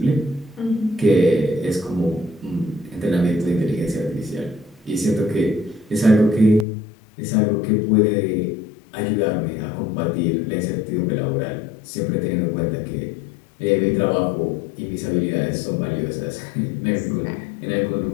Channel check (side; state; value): right; drops out; at 6.7 s